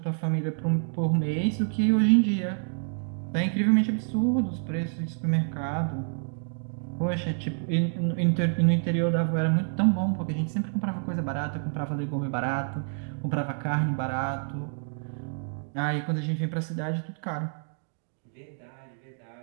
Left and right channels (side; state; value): left; silent; 59 dB below the other